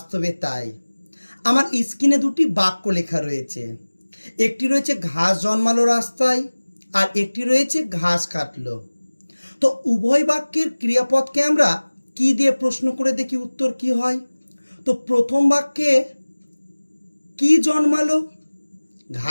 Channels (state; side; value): inverted; both; correlation -1.00